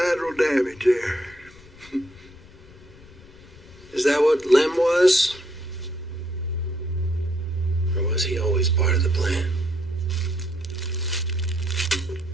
damage there. Is that what Lem was? Or was he always part of the plan?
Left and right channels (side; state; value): left; noise; rumble, 22 dB below the sound